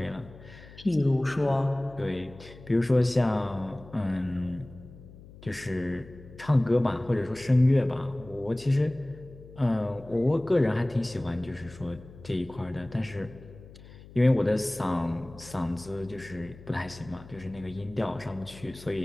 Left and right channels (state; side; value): noise; left; hum, 19 dB below the sound